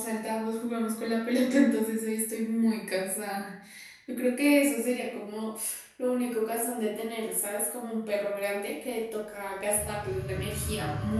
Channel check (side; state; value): both; identical; correlation 1.00